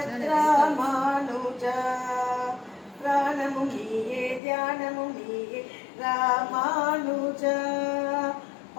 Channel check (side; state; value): right; drops out; at 4.4 s